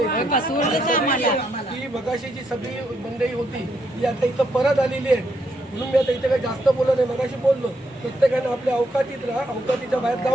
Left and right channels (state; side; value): normal; both; correlation 0.77